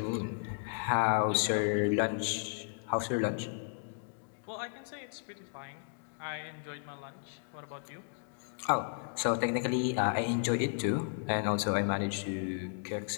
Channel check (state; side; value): silent; right; digital silence